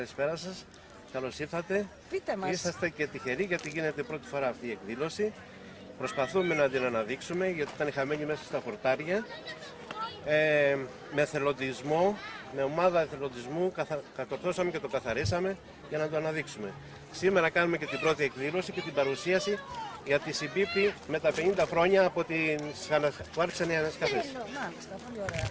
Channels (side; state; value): both; identical; correlation 1.00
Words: σας. Καλώς ήρθατε. Πείτε μας. Είσαστε και τυχεροί γιατί γίνεται πρώτη φορά αυτή η εκδήλωση. Προσπαθούμε να την αναδείξουμε γιατί ήταν χαμένη μέσα στα χορτάρια. Με εθελοντισμό, με ομάδα εθελοντισμού κατορθώσαμε και το καθαρίσαμε για να το αναδείξουμε. Σήμερα κάνουμε και την πρώτη εκδήλωση και την παρουσίαση για τη συμπίπτει με τα 50 χρόνια από που άρχισαν οι ανασκαφές. Μάλιστα, πολύ ωραία.